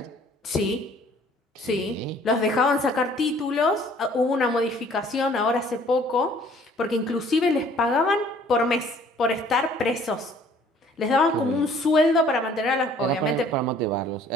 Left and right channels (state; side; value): normal; both; correlation 0.56